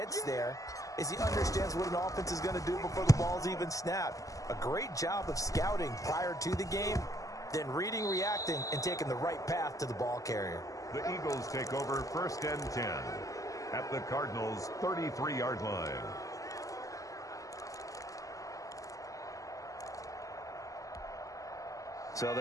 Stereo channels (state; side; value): late; right; 0.16 ms